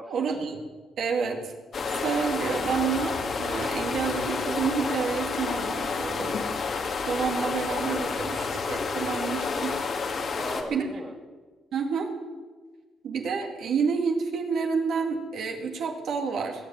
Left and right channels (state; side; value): normal; both; correlation 0.73